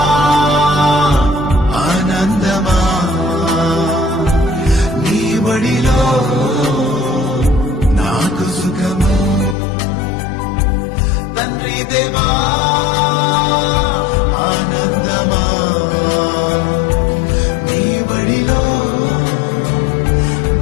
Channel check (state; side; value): drops out; right; at 9.6 s